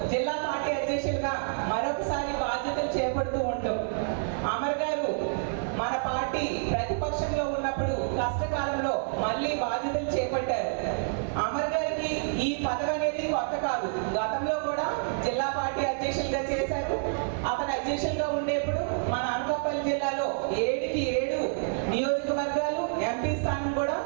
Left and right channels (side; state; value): left; silent; 59 dB below the other